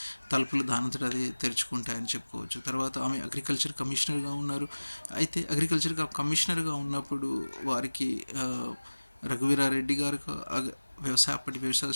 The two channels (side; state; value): both; inverted; correlation -1.00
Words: తలుపులు దానంతట అదే తెరుచుకుంటాయని చెప్పుకోవచ్చు. తర్వాత ఆమె అగ్రికల్చర్ కమిషనర్గా ఉన్నారు. అయితే అగ్రికల్చర్ కమిషనర్గా ఉన్నప్పుడు వారికి రఘువీరారెడ్డి గారు అప్పటి వ్యవసాయ